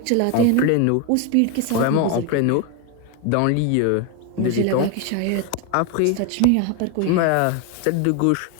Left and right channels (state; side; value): different; both; correlation 0.01